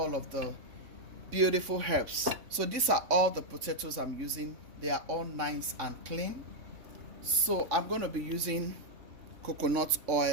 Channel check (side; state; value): left; late; 3.5 ms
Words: of the beautiful herbs. So these are all the potatoes I'm using. They are all nice and clean. So I'm going to be using coconut